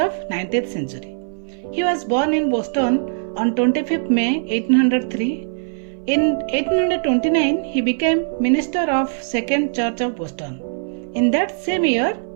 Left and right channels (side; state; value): left; silent; 60 dB below the other